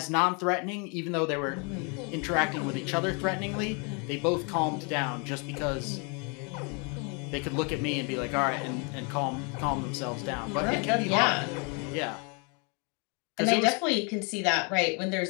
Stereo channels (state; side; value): quieter; right; 34.1 dB